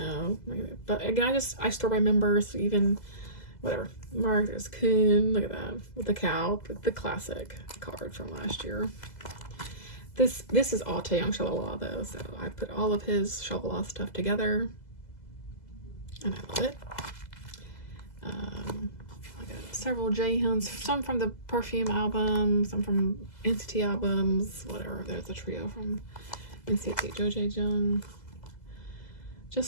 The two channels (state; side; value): late; right; 2.0 ms